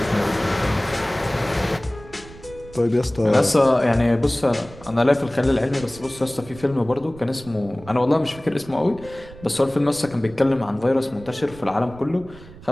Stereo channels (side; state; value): right; noise; rumble, 19 dB below the sound